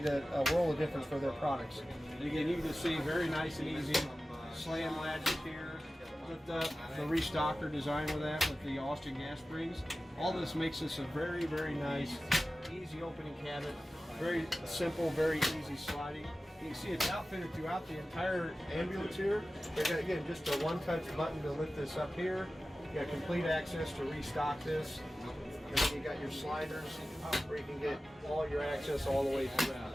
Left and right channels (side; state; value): both; normal; correlation 0.95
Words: a world of difference for their products. And again, you can just see very nice and easy slam latches here. Lift up the restocker design with that, with the Austin gas springs. All this makes this a very, very nice, easy opening cabinet. Very simple, very easy sliding. You can see it's outfitted throughout the entire ambulance here. You've got, again, just a one-touch button to lift this up here. You got complete access to restock this. And then you got your sliders where you can get all your access all the way